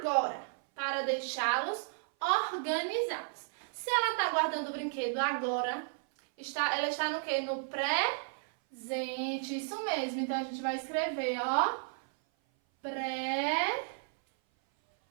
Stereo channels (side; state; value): left; silent; 56 dB below the other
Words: para deixá-los organizados. Se ela está guardando o brinquedo agora, ela está no quê? No presente. Isso mesmo. Então a gente vai escrever, ó. Presente.